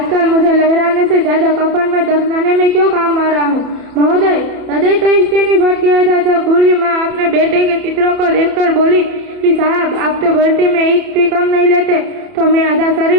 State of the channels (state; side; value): late; left; 31 ms